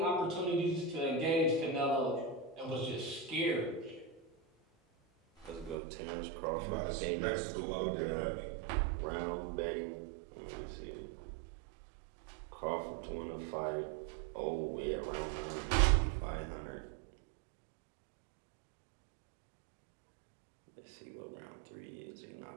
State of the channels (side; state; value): left; drops out; at 5.8 s